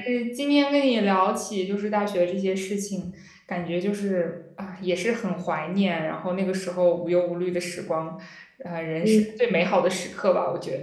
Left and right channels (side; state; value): both; identical; correlation 1.00